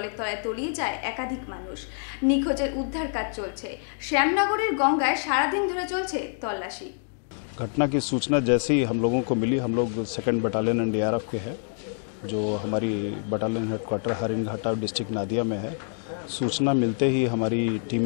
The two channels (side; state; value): right; silent; 58 dB below the other